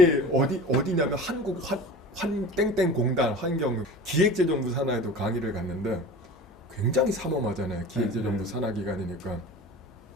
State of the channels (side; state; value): both; normal; correlation 0.37